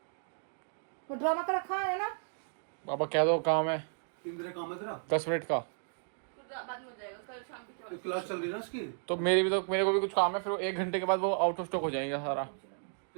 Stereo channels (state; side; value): silent; left; 55 dB below the other